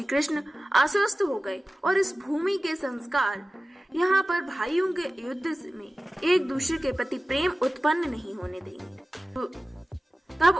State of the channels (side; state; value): both; normal; correlation 0.96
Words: कृष्ण आश्वस्त हो गए और इस भूमि के संस्कार यहाँ पर भाइयों के युद्ध में एक दूसरे के प्रति प्रेम उत्पन्न नहीं होने देंगे। तो